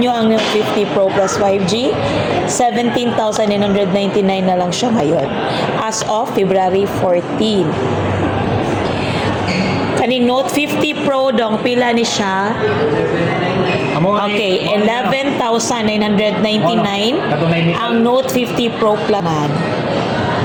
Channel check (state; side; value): identical; both; correlation 1.00